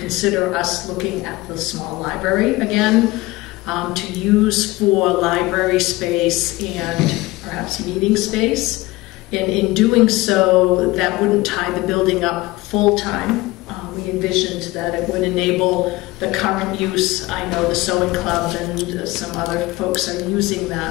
us looking at the small library again, to use for library space and perhaps meeting space. And in doing so, that wouldn't tie the building up full-time. We envisioned that it would enable the current use. I know the sewing club and some other folks are using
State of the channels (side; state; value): right; quieter; 20.2 dB